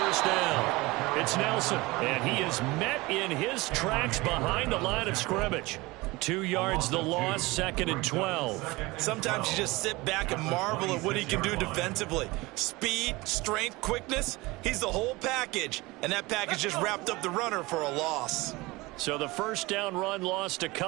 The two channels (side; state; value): left; quieter; 22.0 dB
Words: down. It's Nelson, and he is met in his tracks behind the line of scrimmage. 2 yards the loss, 2nd and 12. Sometimes you just sit back and marvel at what he can do defensively. Speed, strength, quickness, he's the whole package. And that package just wrapped up the runner for a loss. So the first down run lost a